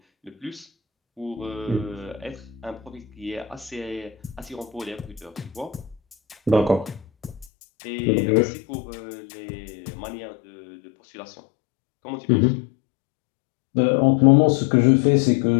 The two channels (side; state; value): right; drops out; at 7.5 s